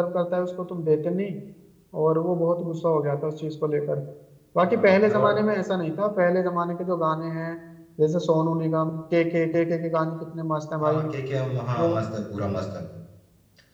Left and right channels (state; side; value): identical; both; correlation 1.00